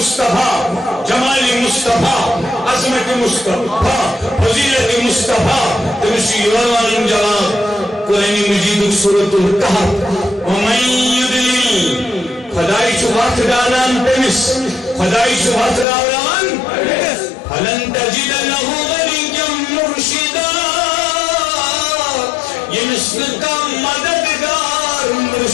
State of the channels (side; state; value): right; drops out; at 15.9 s